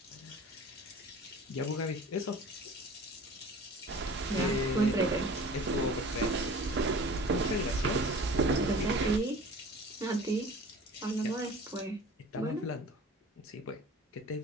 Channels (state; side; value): normal; both; correlation 0.43